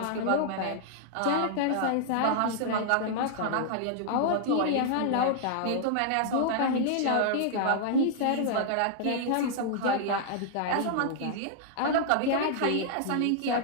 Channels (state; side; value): different; both; correlation -0.01